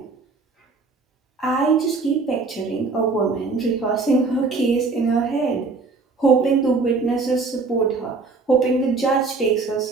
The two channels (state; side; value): quieter; left; 4.1 dB